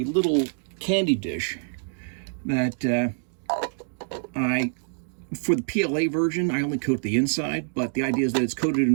little candy dish that for the PLA version, I only coat the inside, but the idea is that it's coated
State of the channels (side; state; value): left; silent; digital silence